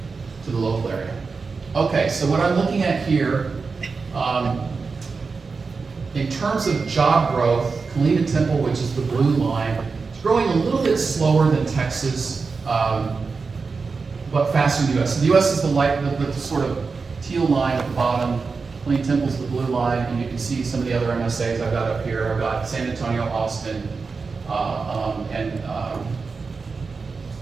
to the local area. Okay, so what I'm looking at here In terms of job growth, Killeen and Temple, which is the blue line, is growing a little bit slower than Texas, but faster than the US. So the US is the sort of teal line at the bottom. Killeen Temple's the blue line, and you can see some of the other MSAs I've got up here. I've got San Antonio, Austin, and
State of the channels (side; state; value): left; quieter; 4.6 dB